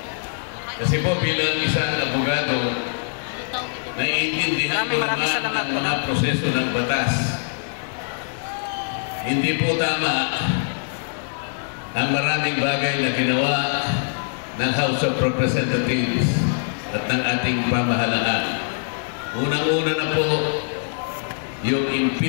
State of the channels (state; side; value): silent; right; 63 dB below the other